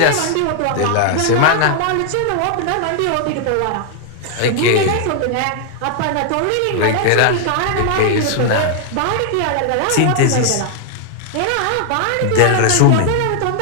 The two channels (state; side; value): different; both; correlation 0.00